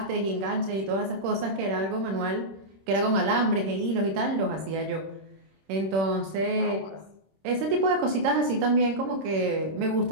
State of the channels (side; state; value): left; late; 26 ms